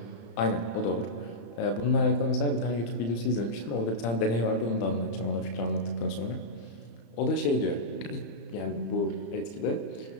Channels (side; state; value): right; late; 35 ms